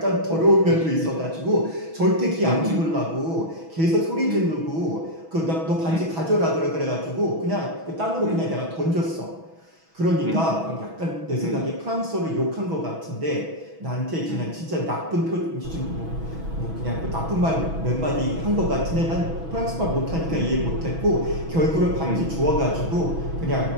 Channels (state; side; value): late; left; 6.1 ms